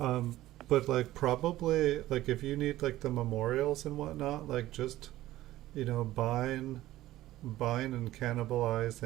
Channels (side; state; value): left; quieter; 15.4 dB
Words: like probably like if you need like the memorials and whatnot, like just buying and